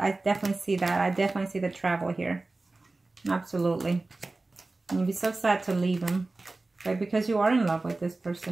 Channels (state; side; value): quieter; left; 3.2 dB